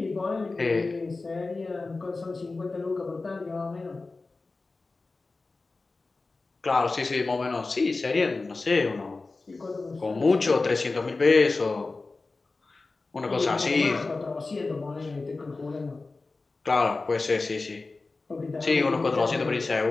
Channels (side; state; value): right; quieter; 3.6 dB